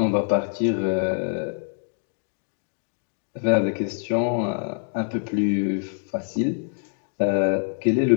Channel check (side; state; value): right; silent; digital silence